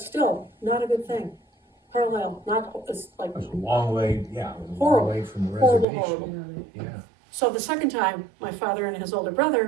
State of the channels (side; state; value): left; drops out; at 5.9 s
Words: still, not a good thing. Carlisle, it's like, It was a long way, yeah, it was a long Horrible. way from the Horrible, reservation. horrible. Yeah. so the second time, my father and his older